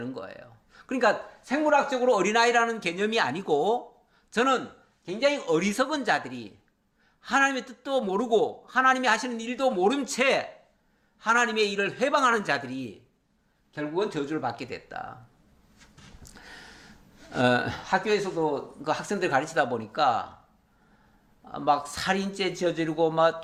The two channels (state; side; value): identical; both; correlation 1.00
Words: 거예요. 그러니까 생물학적으로 어린아이라는 개념이 아니고 저는 굉장히 어리석은 자들이 하나님의 뜻도 모르고 하나님이 하시는 일도 모른 채 하나님의 일을 회방하는 자들이 결국은 저주를 받게 됐다. 학교에서도 그 학생들 가르치다 보니까 막 살인죄 저지르고 막